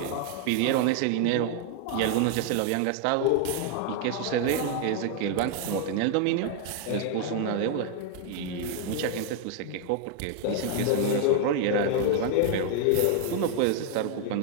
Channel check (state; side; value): different; both; correlation 0.00